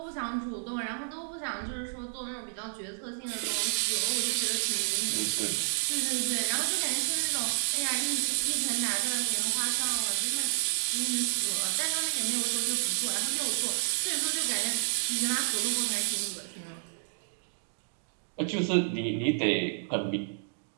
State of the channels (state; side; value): silent; left; digital silence